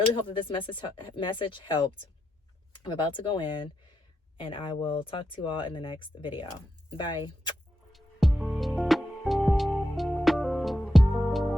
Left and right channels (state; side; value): normal; both; correlation 0.85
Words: hope that this message helped. I'm about to go in, and I will talk to you all in the next video. Bye.